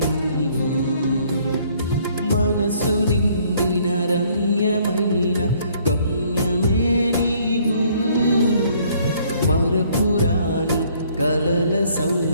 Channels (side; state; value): both; inverted; correlation -0.62